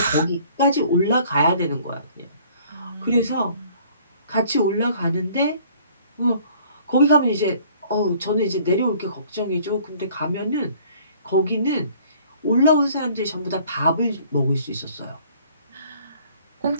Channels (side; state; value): both; inverted; correlation -0.56